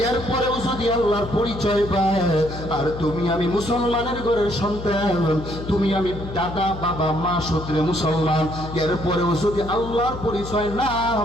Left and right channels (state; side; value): noise; left; hum, 10 dB below the sound